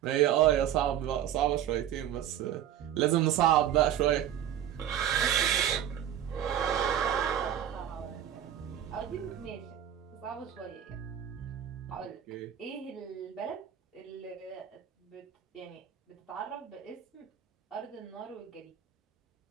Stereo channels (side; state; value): left; quieter; 10.5 dB